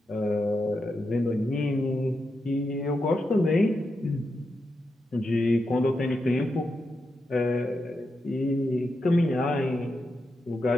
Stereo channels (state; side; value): normal; both; correlation 0.86